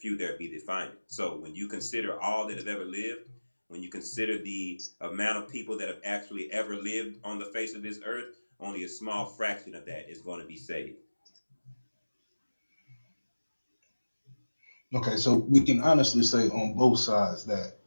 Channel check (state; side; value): inverted; both; correlation -1.00